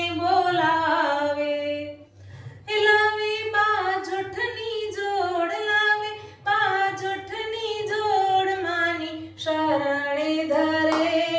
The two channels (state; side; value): identical; both; correlation 1.00